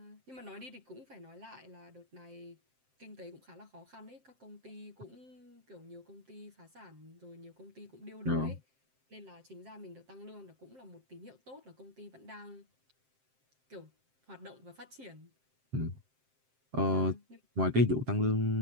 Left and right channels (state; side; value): late; left; 7.6 ms